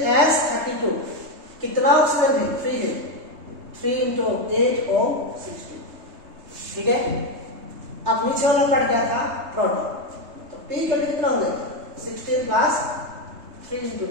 कितना ऑक्सीजन है? 3 है, 3 × 8O16, ठीक है। अब नीचे वाला कट गया था प्रोटॉन, तो P इक्वल टू कितना हो गया 16 प्लस 3 इंटू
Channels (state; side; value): late; left; 3.2 ms